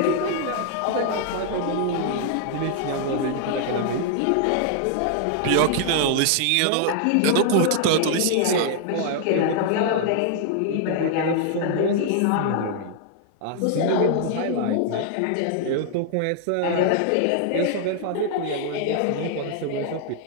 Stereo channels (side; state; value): both; different; correlation 0.00